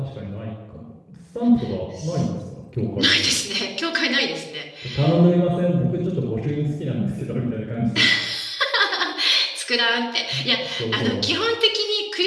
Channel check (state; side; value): identical; both; correlation 1.00